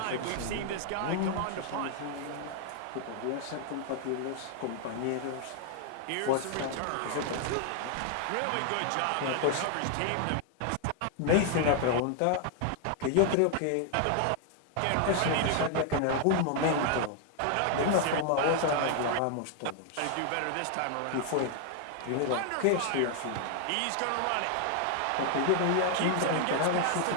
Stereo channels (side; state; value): both; different; correlation 0.00